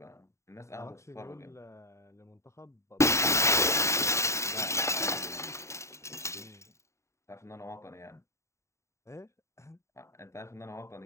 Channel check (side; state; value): right; late; 0.14 ms